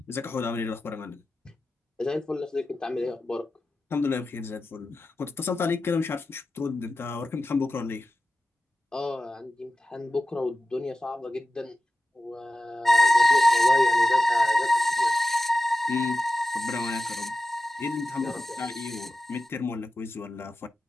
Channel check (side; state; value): both; normal; correlation 0.93